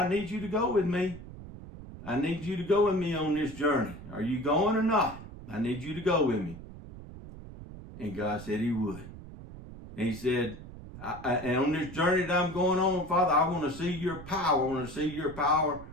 need you to go with me. I need you to go with me on this journey. Are you going or not? I need you to go with me. And God said he would. And he said, and on this journey that I'm going on, Father, I want to see your power. I want to see your power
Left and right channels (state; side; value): noise; right; rumble, 14 dB below the sound